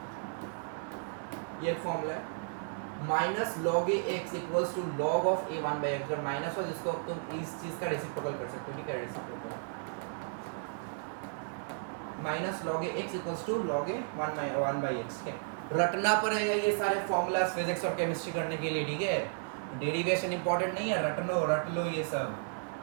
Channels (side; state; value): left; silent; 55 dB below the other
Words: ये एक फॉर्मूला है। Minus log A X equals to log of A 1 by X. अगर माइनस हो जिसको तुम इस चीज का रेसिप्रोकल कर सकते हो। ठीक है, reciprocal minus log A X equals to log A 1 by X. ठीक है, रटना पड़ेगा ये सारे फॉर्मूलाज फिजिक्स और केमिस्ट्री करने के लिए। ठीक है, डेरिवेशन इंपॉर्टेंट नहीं है, रट लो ये सब।